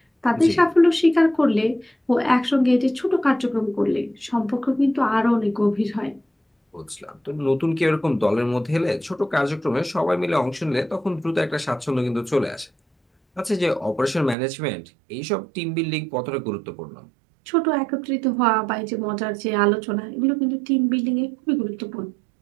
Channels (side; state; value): left; drops out; at 14.4 s